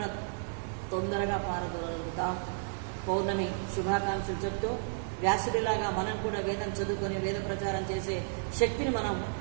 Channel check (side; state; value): left; silent; digital silence